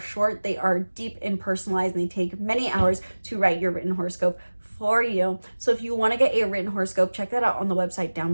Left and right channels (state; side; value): inverted; both; correlation -1.00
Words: they are deep and personalized and they take many hours to write your written horoscope for you. So if you want to get a written horoscope, check that out on the website down